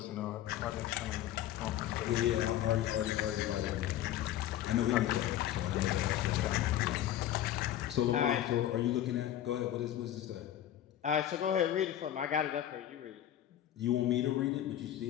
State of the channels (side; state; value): right; quieter; 12.1 dB